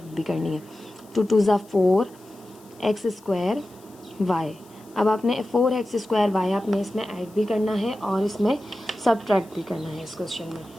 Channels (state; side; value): noise; left; hiss, 27 dB below the sound